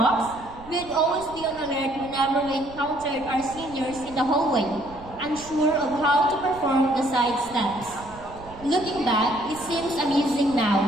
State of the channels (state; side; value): noise; right; rumble, 18 dB below the sound